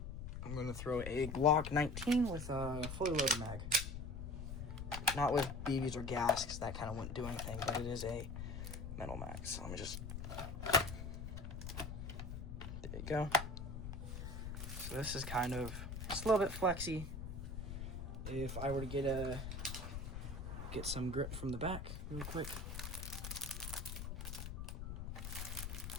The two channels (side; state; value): left; noise; rumble, 6 dB below the sound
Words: I'm going to throw a Glock 19 with a fully loaded mag. Not with BBs or gas, because that kind of wouldn't do anything, but it is a metal mag. So let me just, there you go. So this is kind of, just a little bit flexy. If I were to get some grip from the back real quick.